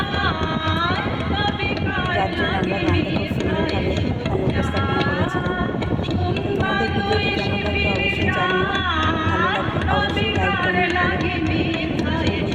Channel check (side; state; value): both; identical; correlation 1.00